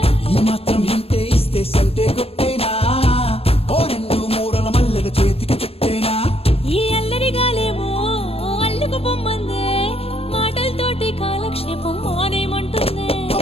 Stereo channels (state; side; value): late; right; 0.28 ms